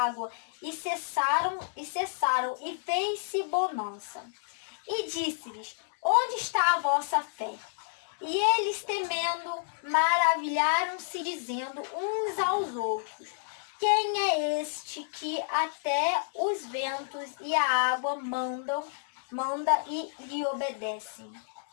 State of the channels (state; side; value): silent; right; digital silence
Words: e cessaram, e fez-se bonança. E disse-lhes: onde está a vossa fé? E eles, temendo, maravilharam-se, dizendo uns aos outros: quem é este que até os ventos e a água manda e lhe obedecem?